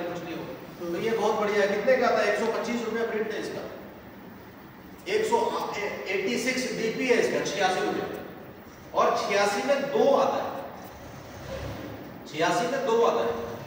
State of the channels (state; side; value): identical; both; correlation 1.00